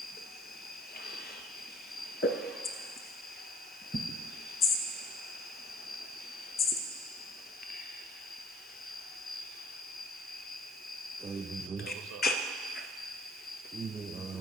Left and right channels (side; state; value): both; normal; correlation 0.56